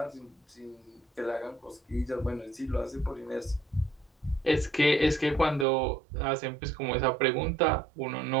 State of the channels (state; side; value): drops out; left; at 5.7 s